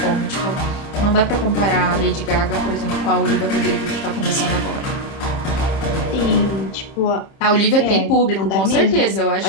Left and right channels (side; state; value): right; late; 30 ms